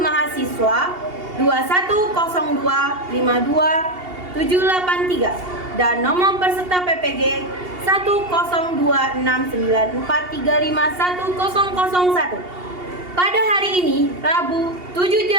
mahasiswa 21025252783 dan nomor peserta PPG 10269435101. Pada hari ini, Rabu 7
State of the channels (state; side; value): late; left; 2.8 ms